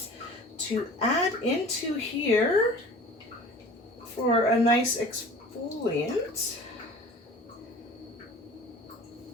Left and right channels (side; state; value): both; normal; correlation 0.42